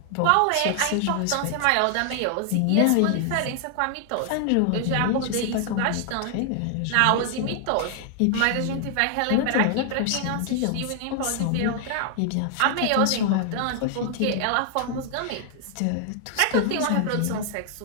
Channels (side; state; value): both; different; correlation 0.00